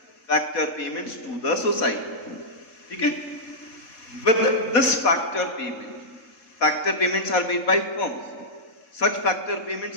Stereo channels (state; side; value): late; right; 3.8 ms